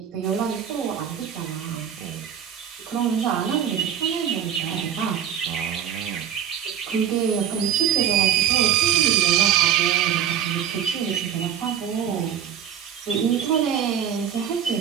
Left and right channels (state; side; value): quieter; left; 9.2 dB